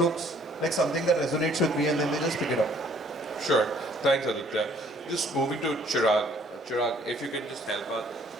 like something that resonates with me, and then they just pick it up. Sure. Thanks, Aditya. Just moving to Chirag. Chirag, if you can just help us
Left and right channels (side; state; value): both; normal; correlation 0.60